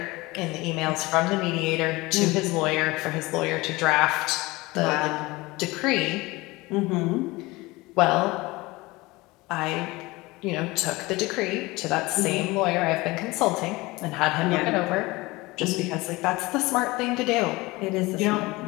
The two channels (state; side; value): quieter; right; 21.7 dB